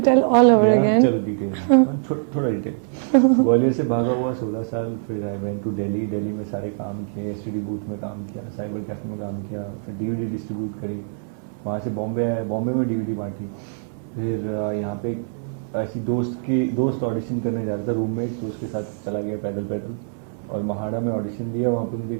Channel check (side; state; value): left; silent; 58 dB below the other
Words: tell all over again. चलो डिटेल, थोड़ा डिटेल। ग्वालियर से भागा हुआ 16 साल, फिर I went to Delhi. Delhi में सारे काम किए, एसटीडी बूथ में काम किया, साइबर कैफे में काम किया, फिर डीवीडी डिस्ट्रीब्यूट करी। वहाँ से बॉम्बे आया, बॉम्बे में डीवीडी बांटी। फिर यहाँ पे ऐसी दोस्त ऑडिशन करने जा रहा था, रूममेट, तो उसके साथ चला गया पैदल पैदल, और महाड़ा में ऑडिशन दिया। वहाँ पे मुझे